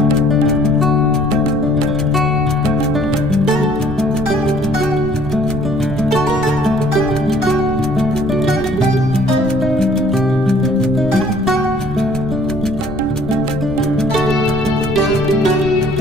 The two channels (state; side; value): noise; right; rumble, 10 dB below the sound